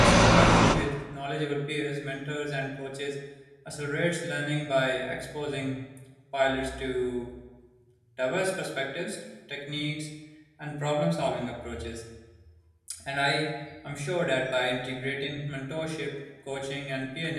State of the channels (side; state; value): both; identical; correlation 1.00